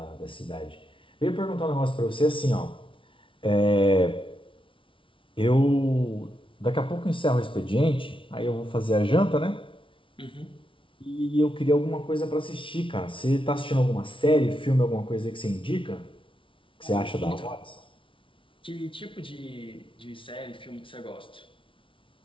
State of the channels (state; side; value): late; right; 0.25 ms